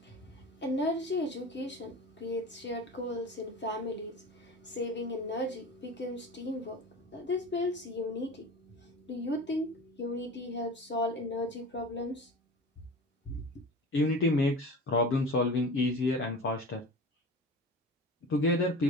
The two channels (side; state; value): both; normal; correlation 0.34